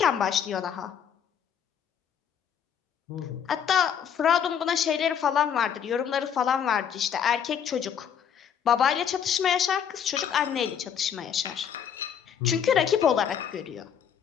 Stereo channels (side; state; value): right; quieter; 8.1 dB